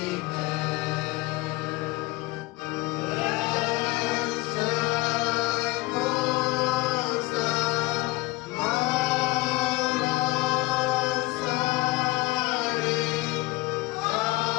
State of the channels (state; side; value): quieter; right; 20.9 dB